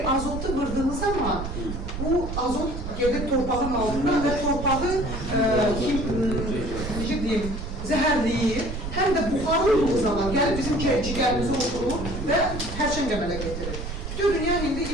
azotu vırdığınız zaman bu azot gelir torpağın altına və torpağı necə deyim, zəhərləyir. Həm də buxarlı olduğu zaman gəlib bizim cigərimizi oturur və hərçən qəmələ getirir. Bütün dünya indi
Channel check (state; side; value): noise; right; rumble, 6 dB below the sound